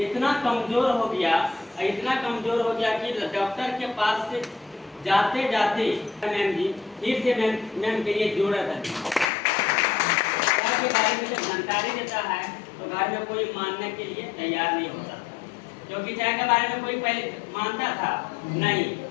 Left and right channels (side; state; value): right; drops out; at 9.2 s